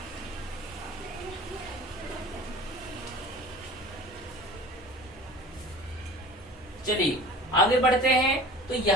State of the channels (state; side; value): normal; both; correlation 0.40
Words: चलिए आगे बढ़ते हैं। तो